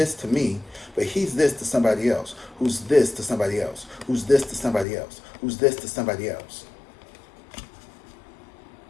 to me, but he's this to somebody else, who's this to somebody else, who's this to somebody else, who's this to somebody else.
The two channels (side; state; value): right; drops out; at 4.9 s